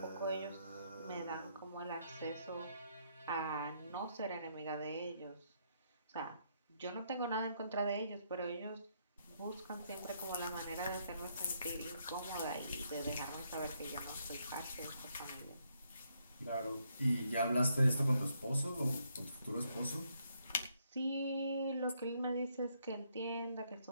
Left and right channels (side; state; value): both; inverted; correlation -0.74